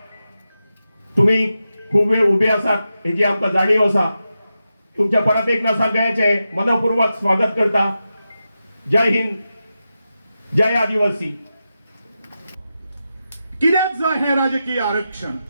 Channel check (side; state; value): both; inverted; correlation -0.90